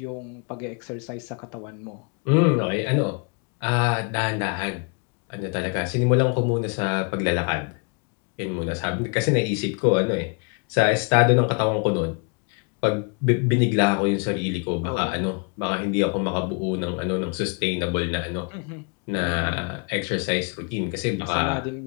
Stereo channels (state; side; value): quieter; right; 36.7 dB